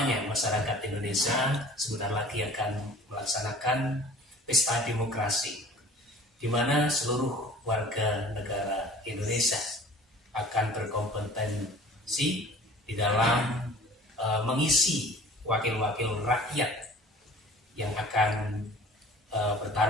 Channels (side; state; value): both; normal; correlation 0.46